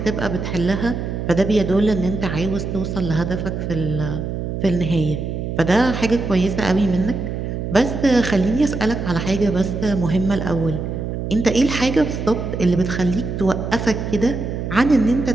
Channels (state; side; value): noise; right; hum, 4 dB below the sound